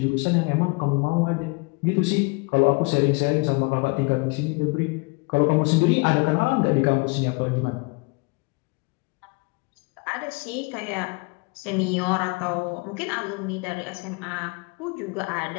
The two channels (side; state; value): right; quieter; 29.1 dB